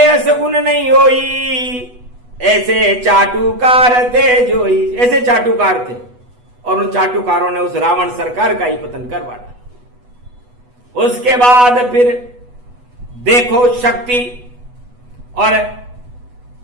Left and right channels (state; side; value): late; left; 8.1 ms